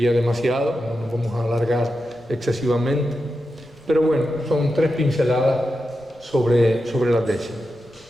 demasiado, no nos vamos a alargar excesivamente, pero bueno, son 3 pinceladas sobre las décimas.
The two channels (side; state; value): left; noise; rumble, 30 dB below the sound